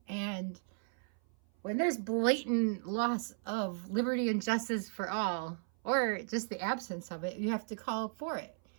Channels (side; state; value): left; silent; 54 dB below the other